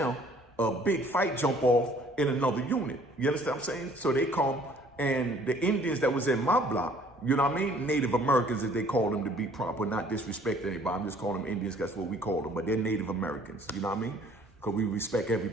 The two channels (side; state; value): both; normal; correlation 0.57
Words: a big fight jump off in another unit. You understand what I'm saying? So they come, and the Indians that was in my block, you know what I mean? Native Americans, as they call them, to be proper, not disrespect anybody. I'm just calling them Indians, that's what we call them. But they're Native Americans, you know what I mean? Because we respect